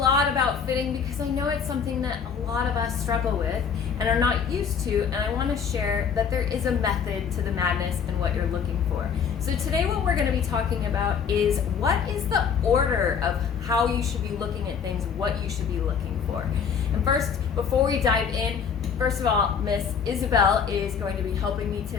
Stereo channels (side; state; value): right; quieter; 6.8 dB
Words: about fitting because I know it's something that a lot of us struggle with and are not used to, and I want to share that there is a method to the madness and what you're looking for. So today what we're going to be talking about is what is the order of how you should be looking at things, what you should be looking for. And first, before we dive in, first of all, Miss Isabel is going to be helping me